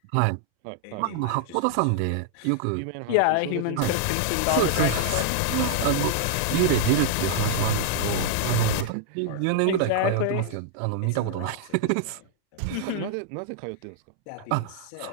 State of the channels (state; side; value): different; both; correlation -0.01